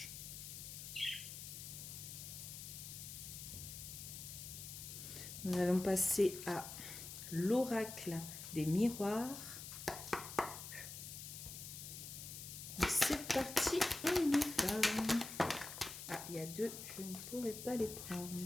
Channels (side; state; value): left; noise; hiss, 9 dB below the sound